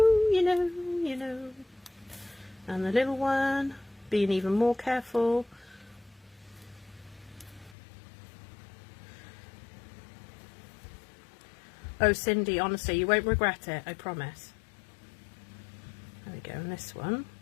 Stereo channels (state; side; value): drops out; right; at 7.8 s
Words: And the little one, being even more careful. Oh, Cindy, honestly, you won't regret it, I promise. There we go, and this one.